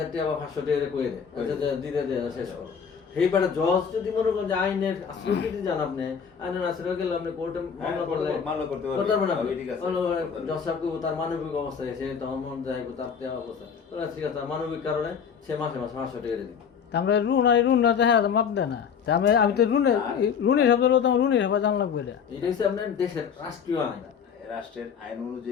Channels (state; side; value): quieter; right; 6.9 dB